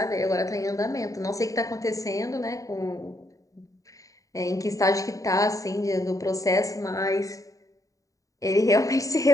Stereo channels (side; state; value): right; late; 0.16 ms